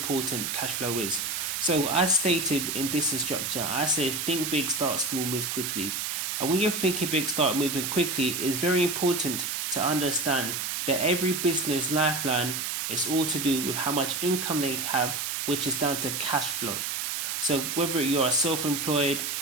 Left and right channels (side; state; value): right; noise; hiss, 2 dB below the sound